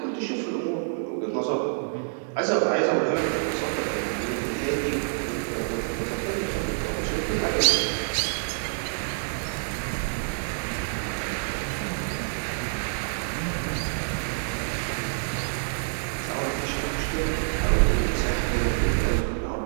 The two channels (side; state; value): left; silent; digital silence